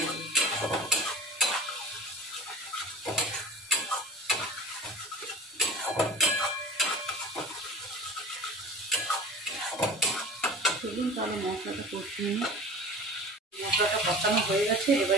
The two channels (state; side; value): normal; both; correlation 0.38